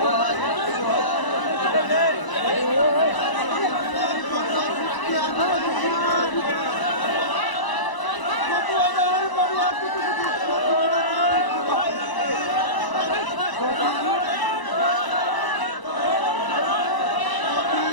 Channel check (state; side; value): late; right; 1.0 ms